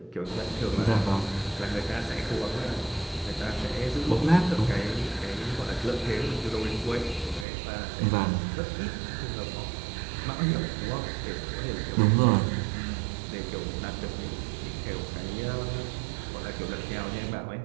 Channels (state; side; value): drops out; left; at 7.5 s